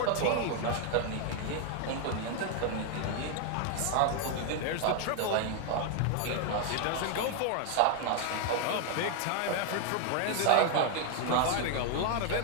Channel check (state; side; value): different; both; correlation 0.00